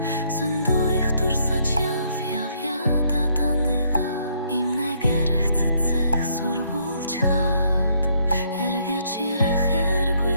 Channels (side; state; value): both; inverted; correlation -0.69